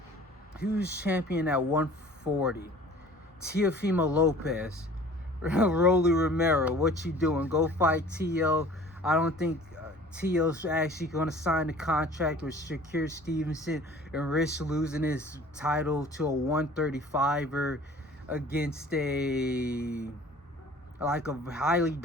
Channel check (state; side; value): normal; both; correlation 0.48